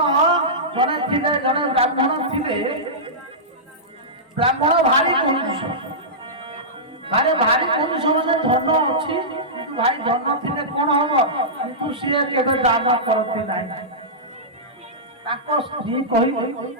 ଜଣେ ଥିଲେ, ଜଣେ ବ୍ରାହ୍ମଣ ଥିଲେ। ବ୍ରାହ୍ମଣ ଭାରି କଂଜୁସ, ଭାରି କଂଜୁସ ମାନେ ଧନ ଅଛି କିନ୍ତୁ ଭାଇ ଧନ ଥିଲେ କଣ ହବ, କିନ୍ତୁ ସିଏ କେବେ ଦାନ କରନ୍ତି ନାହିଁ। ତାଙ୍କ ସ୍ତ୍ରୀ କହିଲେ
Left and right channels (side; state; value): both; normal; correlation -0.16